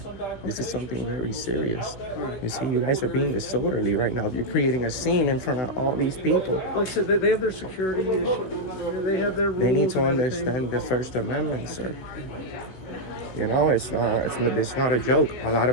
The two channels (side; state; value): right; late; 16 ms